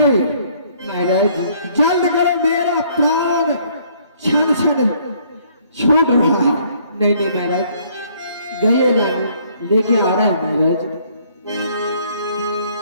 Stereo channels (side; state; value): both; inverted; correlation -0.63